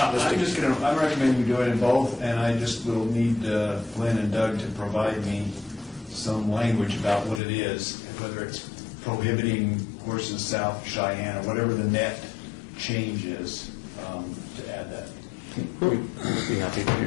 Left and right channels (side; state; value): right; drops out; at 7.4 s